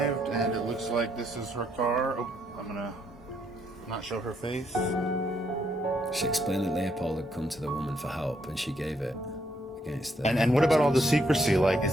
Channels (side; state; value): both; normal; correlation 0.74